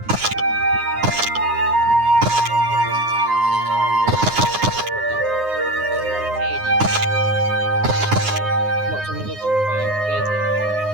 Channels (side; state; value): left; late; 9.6 ms